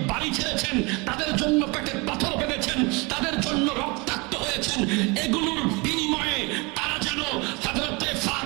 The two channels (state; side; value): quieter; left; 27.4 dB